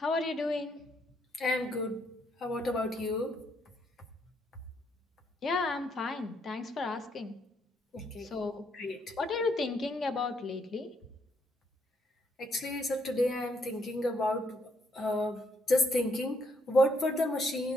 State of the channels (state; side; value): normal; both; correlation 0.73